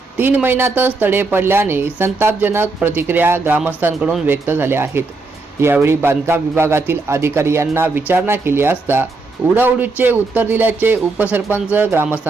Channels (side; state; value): left; quieter; 3.7 dB